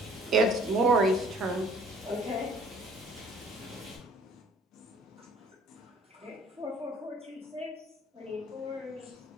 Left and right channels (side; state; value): both; normal; correlation 0.55